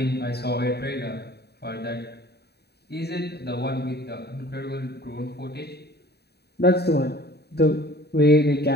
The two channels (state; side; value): late; right; 0.48 ms